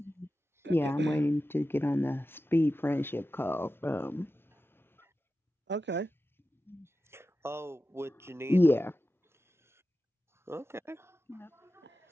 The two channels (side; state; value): both; normal; correlation 0.93